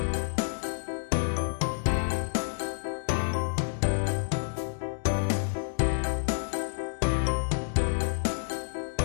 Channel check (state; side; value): silent; right; digital silence